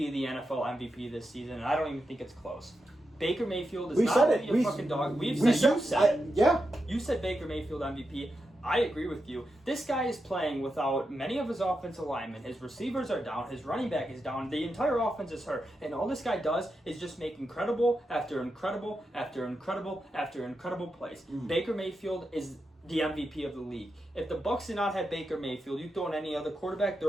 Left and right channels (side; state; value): both; normal; correlation 0.87